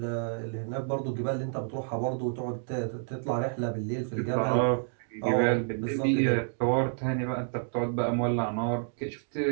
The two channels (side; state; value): left; silent; digital silence